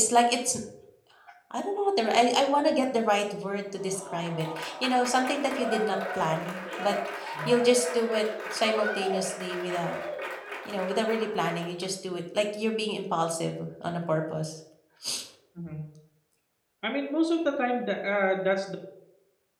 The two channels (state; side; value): identical; both; correlation 1.00